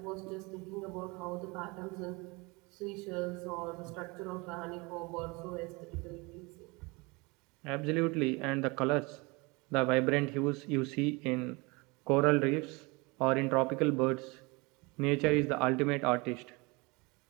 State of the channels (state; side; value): quieter; left; 26.6 dB